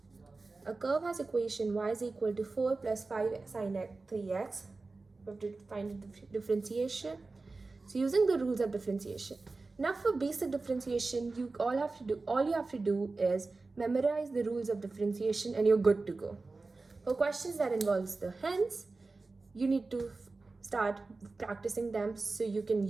A curve has equation y is equal to 4 plus 5 sine 3x. We have to find the differentiation. So using the rules of differentiation. Now for basic differentiation, all you have to do is memorize the rules of differentiation and you're good to go. For questions that involves the hence, you need to start practicing them so you can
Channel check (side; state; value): left; quieter; 3.7 dB